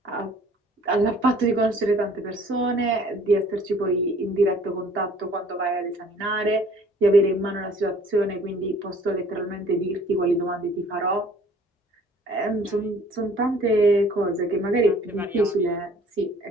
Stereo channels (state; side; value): normal; both; correlation 0.54